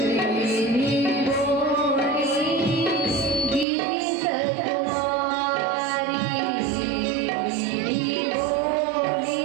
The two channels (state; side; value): drops out; left; at 3.7 s